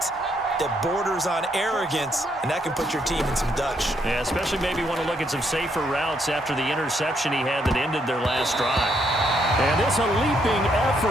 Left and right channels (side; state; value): both; normal; correlation 0.74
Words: that borders on arrogance, and that can put your team in some Dutch. Yeah, especially maybe want to look at some safer routes after the interception he had that ended their last drive. And it's a leaping